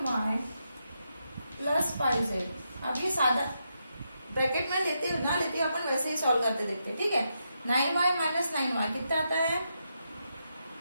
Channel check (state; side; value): inverted; both; correlation -0.83